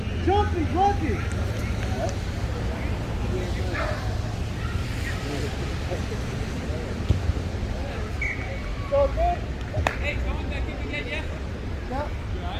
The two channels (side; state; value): both; identical; correlation 1.00